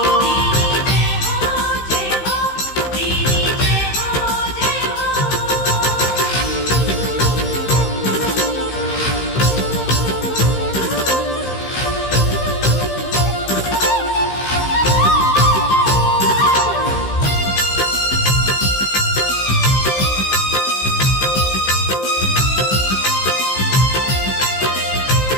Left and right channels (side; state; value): right; late; 15 ms